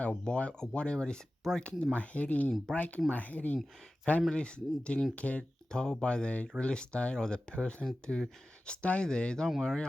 or whatever. It's breaking my head in. Families didn't care told by the real estate or the person to stay there. Don't worry,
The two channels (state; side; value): normal; both; correlation 0.95